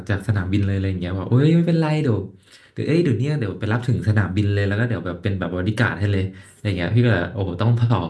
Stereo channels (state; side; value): identical; both; correlation 1.00